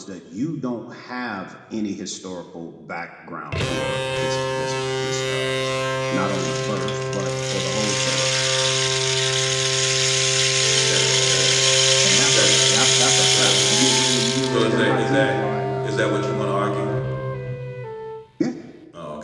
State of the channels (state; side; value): identical; both; correlation 1.00